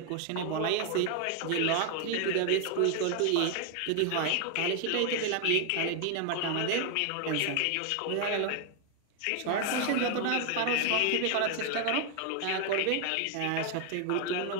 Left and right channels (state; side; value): different; both; correlation 0.00